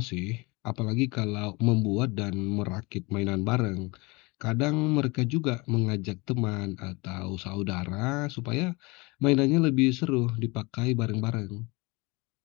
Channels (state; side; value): quieter; right; 25.9 dB